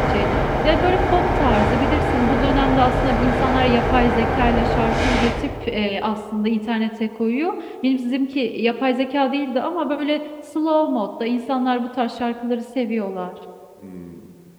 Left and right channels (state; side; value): identical; both; correlation 1.00